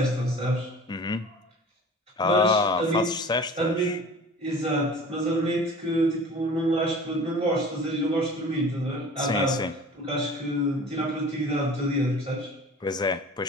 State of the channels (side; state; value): both; normal; correlation 0.42